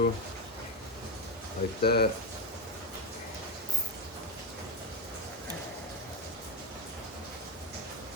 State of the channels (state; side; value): normal; both; correlation 0.13